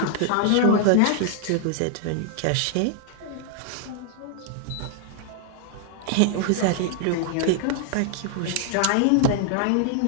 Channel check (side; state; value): both; different; correlation 0.00